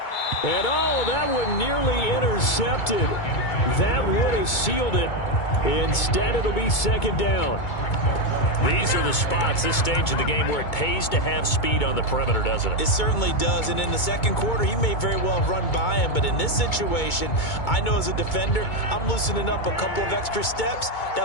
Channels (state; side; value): late; right; 2.2 ms